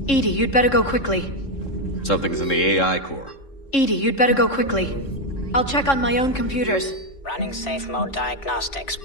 Edie, you'd better go quickly. Something's in the AI core. Edie, you'd better go quickly. I'll check on my own computers. Running safe mode diagnostics.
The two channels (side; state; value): right; late; 3.7 ms